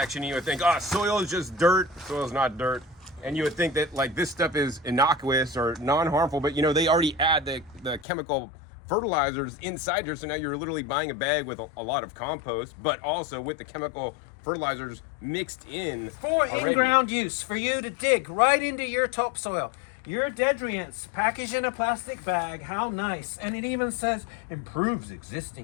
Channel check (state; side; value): drops out; right; at 8.1 s